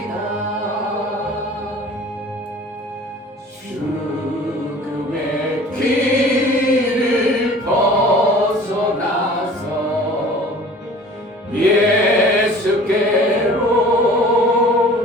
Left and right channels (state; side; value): normal; both; correlation 0.46